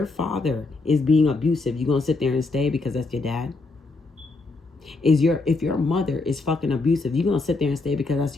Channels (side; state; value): right; quieter; 3.5 dB